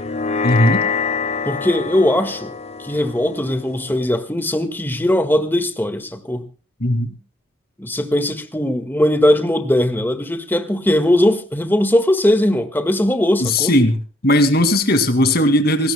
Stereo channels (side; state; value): both; normal; correlation 0.72